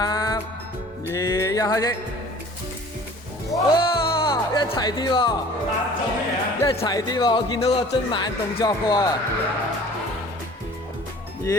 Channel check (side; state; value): both; normal; correlation 0.48